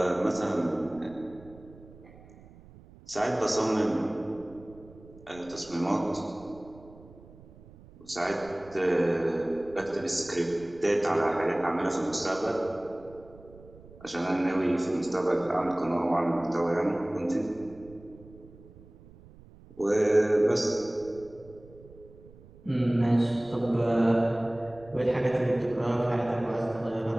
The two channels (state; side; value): noise; right; rumble, 22 dB below the sound